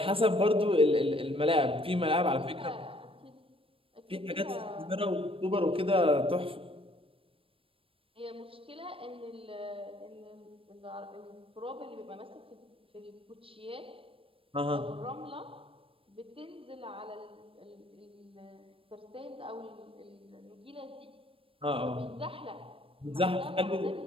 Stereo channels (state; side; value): late; left; 0.26 ms